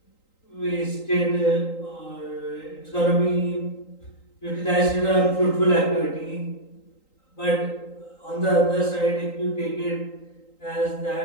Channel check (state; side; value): late; right; 3.8 ms